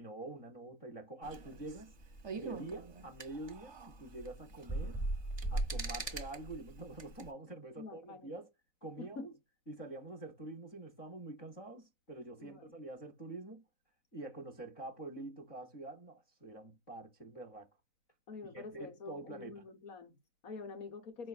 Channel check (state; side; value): late; right; 3.9 ms